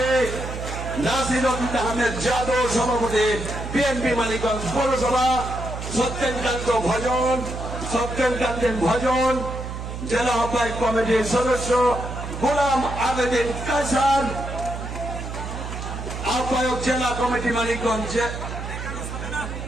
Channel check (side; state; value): right; noise; hum, 7 dB below the sound